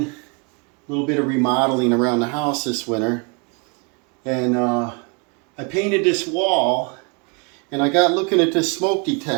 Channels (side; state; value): left; quieter; 33.2 dB